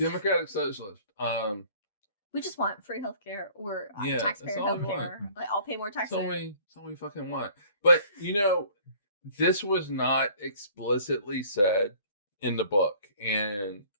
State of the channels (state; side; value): inverted; both; correlation -0.52